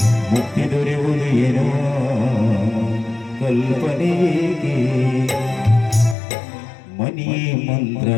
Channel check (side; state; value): right; drops out; at 6.2 s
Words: ಮುಕ್ತಿ ದೊರೆಯುವುದು ಏನೋ ಕಲ್ಪನೆಗೆ ಮನೆಯೇ